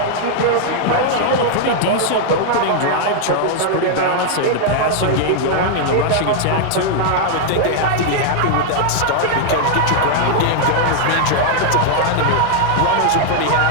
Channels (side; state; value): both; different; correlation -0.01